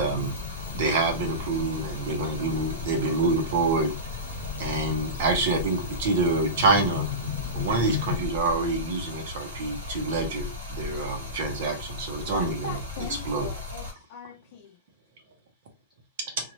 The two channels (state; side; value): normal; both; correlation -0.19